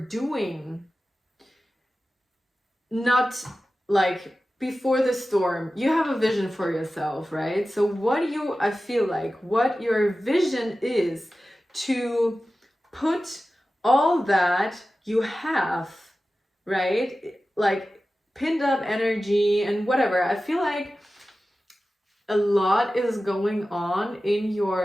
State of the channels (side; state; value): both; normal; correlation 0.95